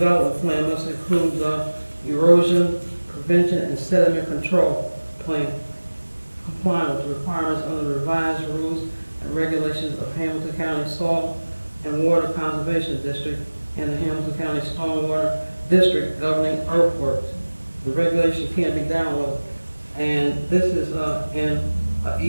plan must include the erosion prevention and sediment control plan, complying with the requirements under the revised rules and regulations of Hamilton County Soil and Water Conservation District and the Hamilton County Stormwater District governing earthworks. The regulation can't be downloaded. And this is in an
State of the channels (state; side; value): inverted; both; correlation -1.00